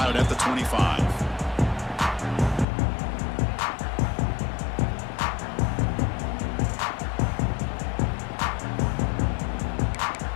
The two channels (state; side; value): drops out; right; at 2.7 s